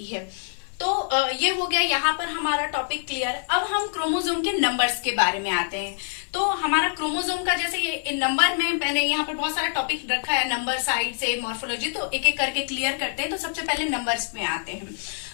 है। तो ये हो गया यहाँ पर हमारा टॉपिक क्लियर। अब हम क्रोमोसोम के नंबर्स के बारे में आते हैं। तो हमारा क्रोमोसोम का जैसे ये नंबर में मैंने यहाँ पर बहुत सारा टॉपिक रखा है, नंबर साइड से मॉर्फोलॉजी, तो एक एक करके क्लियर करते हैं। तो सबसे पहले नंबर्स में आते हैं।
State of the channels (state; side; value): silent; right; 55 dB below the other